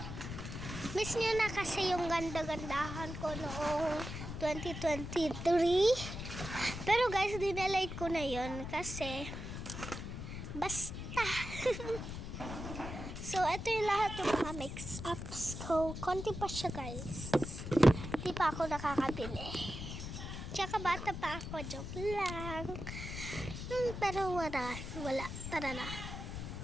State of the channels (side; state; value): left; noise; rumble, 7 dB below the sound